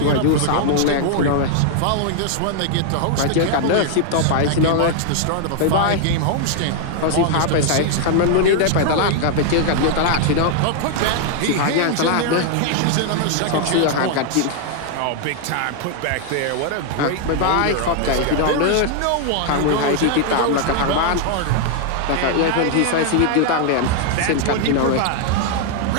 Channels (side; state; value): both; different; correlation 0.00